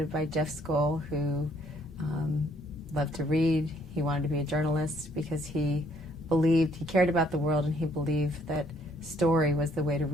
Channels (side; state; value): both; normal; correlation 0.65